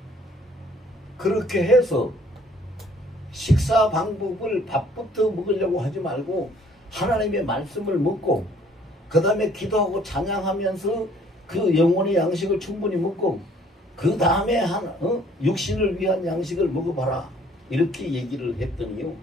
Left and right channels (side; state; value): both; normal; correlation 0.59